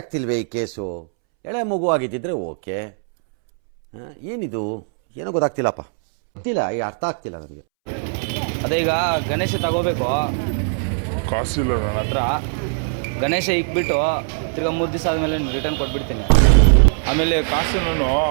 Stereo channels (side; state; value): left; silent; 65 dB below the other